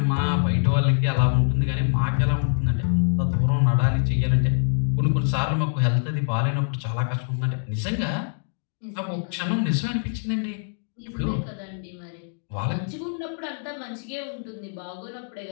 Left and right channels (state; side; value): silent; right; digital silence